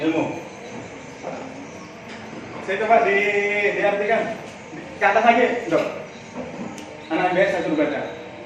ilmu. Saya coba diartikan. Ke atas lagi, Dok. Anak biasa saya suruh baca.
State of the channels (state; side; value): identical; both; correlation 1.00